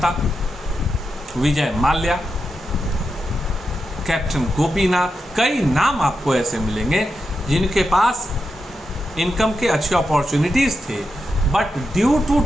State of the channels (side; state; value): both; normal; correlation 0.87